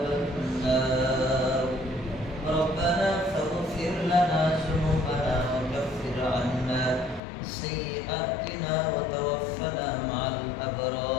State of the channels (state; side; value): drops out; right; at 7.2 s